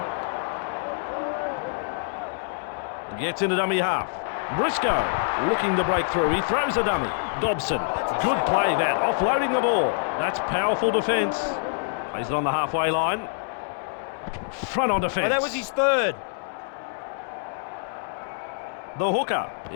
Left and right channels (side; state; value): right; silent; digital silence